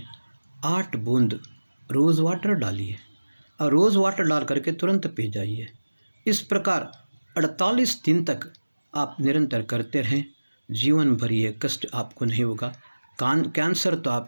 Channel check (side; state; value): both; inverted; correlation -1.00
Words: 8 बूंद रोज़ वाटर डालिए और रोज़ वाटर डाल करके तुरंत पी जाइए। इस प्रकार 48 दिन तक आप निरंतर करते रहें, जीवन भर ये कष्ट आपको नहीं होगा, कैंसर तो